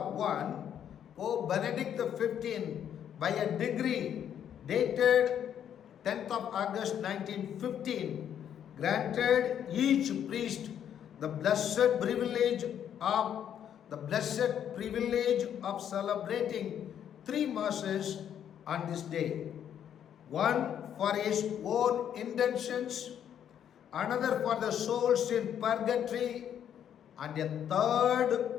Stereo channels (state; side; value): quieter; right; 9.4 dB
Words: I, Pope Benedict XV, by a decree dated 10th of August 1915, granted each priest the blessed privilege of celebrating 3 masses on this day. One for his own intentions, another for the souls in purgatory, and a third